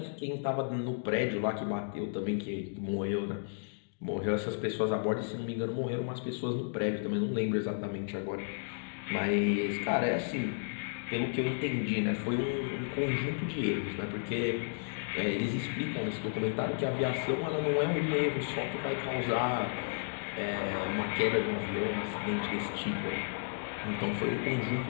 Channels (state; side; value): silent; right; digital silence